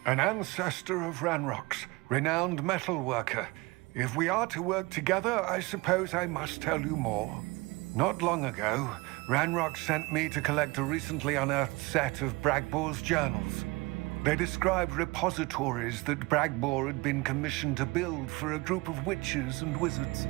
An ancestor of Ranrock's, renowned metal worker. If we are to work together, I suppose I must tell you more. Not long ago, Ranrock sent me to collect a recently unearthed set of Bragbor's journals. They described repositories that Bragbor had been commissioned to build for a group of witches and wizards.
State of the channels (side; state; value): left; quieter; 23.8 dB